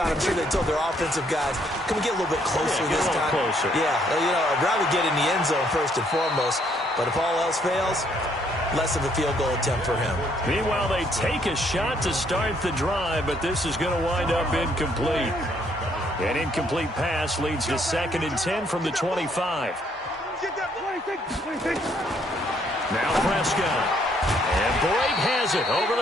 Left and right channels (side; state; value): both; normal; correlation 0.68